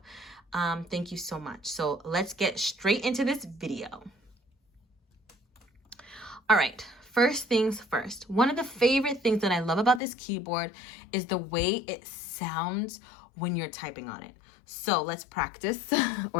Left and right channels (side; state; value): right; drops out; at 10.0 s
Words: Thank you so much. So let's get straight into this video. All right. First things first, one of the favorite things that I love about this keyboard is the way it sounds when you're typing on it. So let's practice